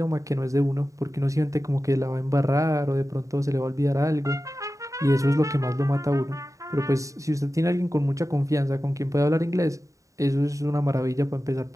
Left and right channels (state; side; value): late; left; 0.16 ms